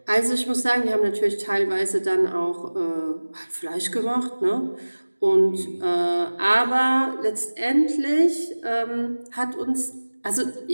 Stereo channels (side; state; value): both; inverted; correlation -1.00